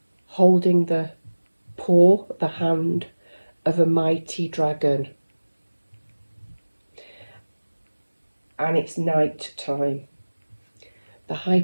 holding the paw, the hand of a mighty dragon. And it's night time. The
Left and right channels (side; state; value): both; inverted; correlation -1.00